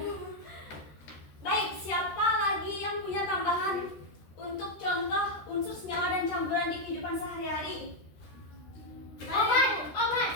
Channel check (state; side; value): late; right; 13 ms